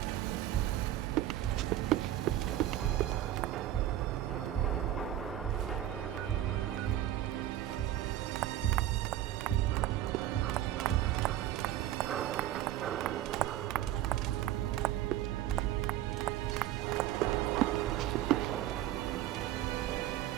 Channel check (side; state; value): left; quieter; 13.1 dB